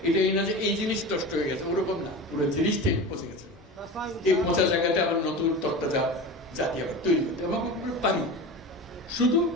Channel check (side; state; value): both; normal; correlation 0.30